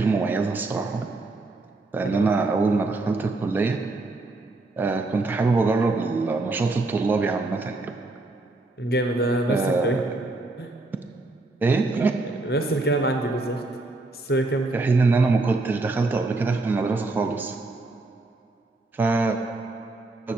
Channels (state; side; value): quieter; left; 3.1 dB